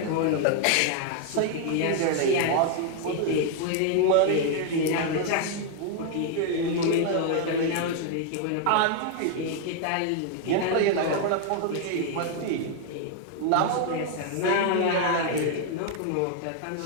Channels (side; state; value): both; different; correlation 0.00